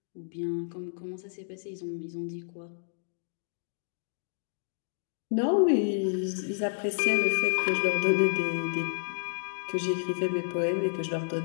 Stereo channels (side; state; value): right; silent; digital silence